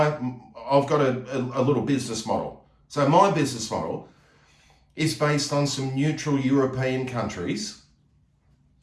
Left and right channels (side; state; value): both; identical; correlation 1.00